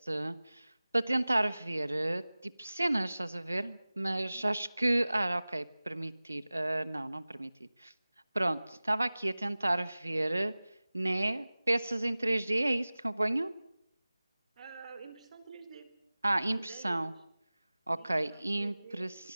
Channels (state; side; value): inverted; both; correlation -0.98